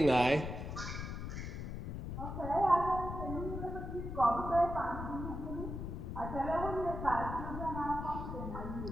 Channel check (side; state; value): left; noise; rumble, 6 dB below the sound